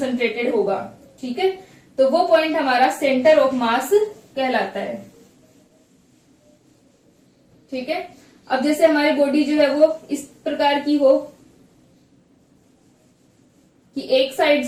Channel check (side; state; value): both; identical; correlation 1.00